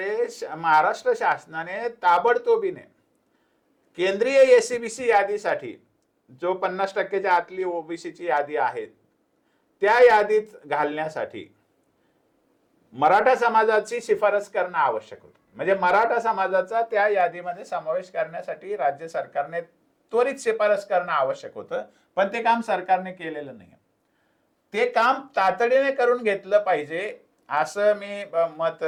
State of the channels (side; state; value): both; identical; correlation 1.00